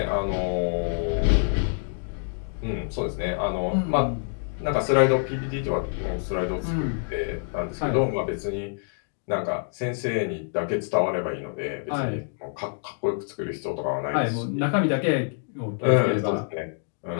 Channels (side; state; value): right; silent; digital silence